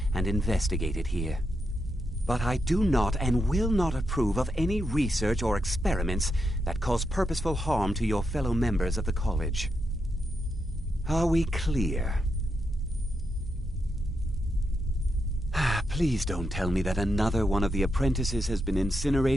and investigated here. But I do not and will not approve of any research or experiments that cause purposeful harm to your fellow members of the college. Are we clear? Please don't tell me that another one of the apprentices has been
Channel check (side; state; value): both; normal; correlation 0.84